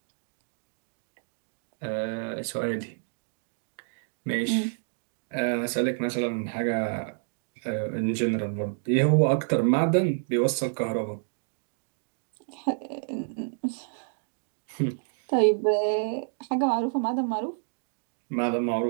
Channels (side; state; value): left; silent; digital silence